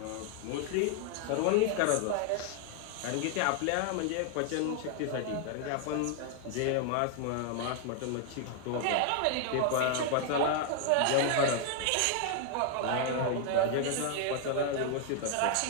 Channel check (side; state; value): both; different; correlation 0.00